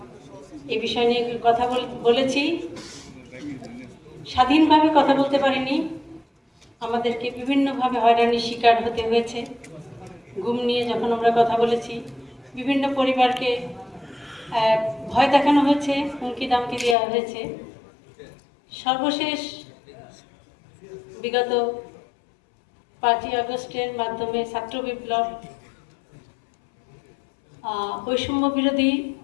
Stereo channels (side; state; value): right; drops out; at 16.9 s